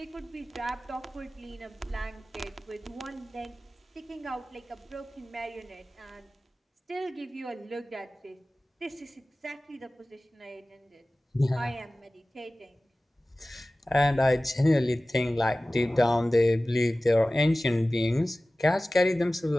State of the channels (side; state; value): both; normal; correlation 0.97